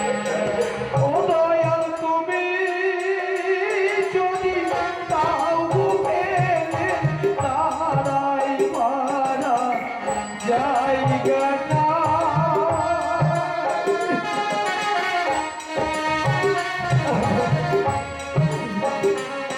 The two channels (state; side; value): identical; both; correlation 1.00